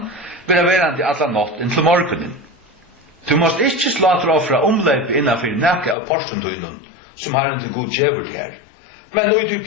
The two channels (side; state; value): right; drops out; at 6.0 s